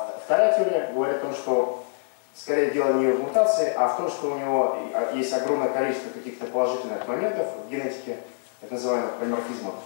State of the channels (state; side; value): silent; right; digital silence